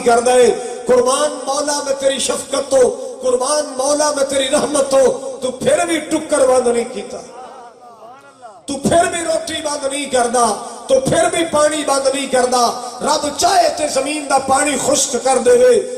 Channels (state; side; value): identical; both; correlation 1.00